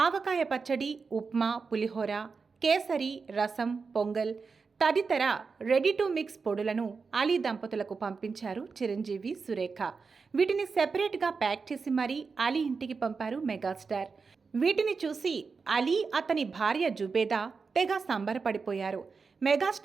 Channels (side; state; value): left; quieter; 4.9 dB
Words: పచ్చడి, ఉప్మా, పులిహోర, కేసరి, రసం, పొంగల్ తదితర రెడీ టు మిక్స్ పొడులను అలీ దంపతులకు పంపించారు చిరంజీవి, సురేఖ. వీటిని సెపరేట్గా ప్యాక్ చేసి మరీ అలీ ఇంటికి పంపారు మెగాస్టార్. వీటిని చూసి అలీ, అతని భార్య జుబేదా తెగ సంబరపడిపోయారు.